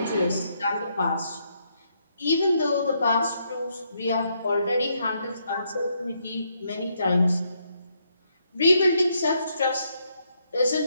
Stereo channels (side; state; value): both; inverted; correlation -0.76